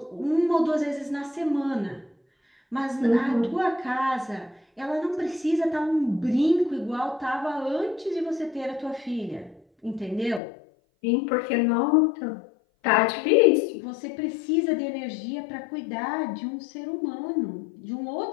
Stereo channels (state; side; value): drops out; right; at 10.4 s